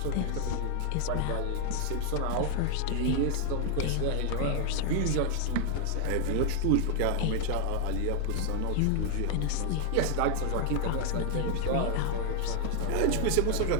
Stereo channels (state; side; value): different; both; correlation 0.00